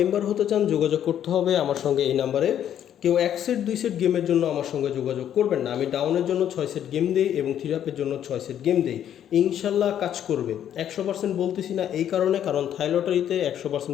হতে চান যোগাযোগ করতে হবে আমার সঙ্গে এই নাম্বারে। কেউ 1 সেট 2 সেট গেমের জন্য আমার সঙ্গে যোগাযোগ করবেন না। আমি ডাউনের জন্য 6 সেট গেম দেই এবং 3 আপের জন্য 6 সেট গেম দেই। ইনশাল্লাহ কাজ করবে। 100% বলতেছি না এই কারণে, কারণ থাই লটারিতে 100%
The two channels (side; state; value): right; quieter; 10.2 dB